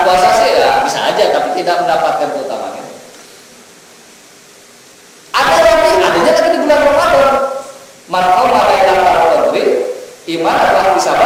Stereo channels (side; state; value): both; identical; correlation 1.00